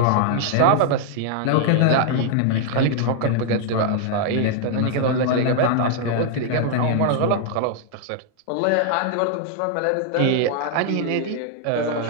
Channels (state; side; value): different; both; correlation -0.01